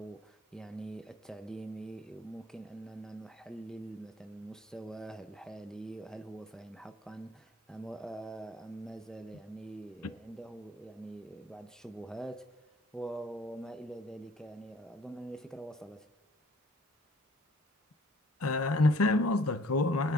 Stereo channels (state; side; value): normal; both; correlation 0.57